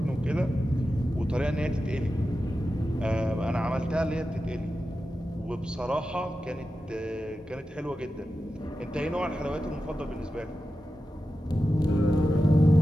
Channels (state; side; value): normal; both; correlation 0.92